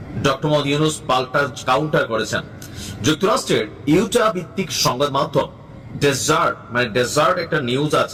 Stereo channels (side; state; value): both; identical; correlation 1.00